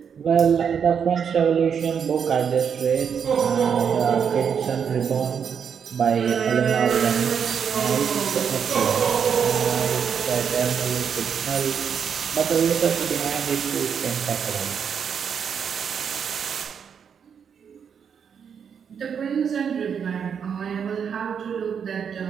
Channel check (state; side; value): quieter; left; 7.2 dB